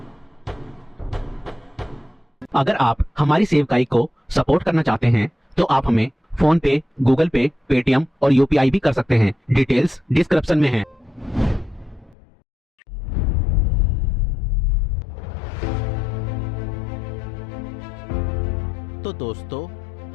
अगर आप हमारी सेवकाई को सपोर्ट करना चाहते हैं तो आप हमें फोन पे, गूगल पे, पेटीएम और यूपीआई भी कर सकते हैं। डिटेल्स डिस्क्रिप्शन में है। तो दोस्तों,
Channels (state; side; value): drops out; right; at 12.2 s